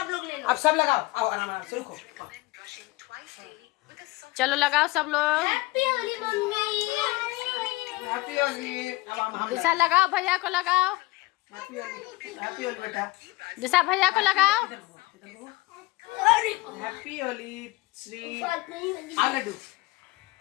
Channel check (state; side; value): quieter; right; 20.5 dB